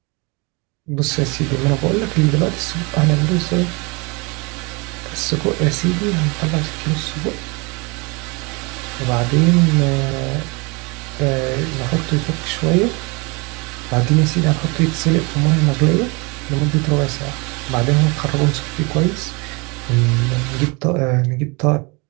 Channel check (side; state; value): left; quieter; 28.7 dB